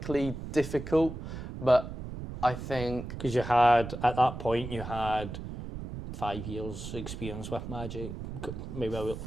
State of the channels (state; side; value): noise; right; rumble, 8 dB below the sound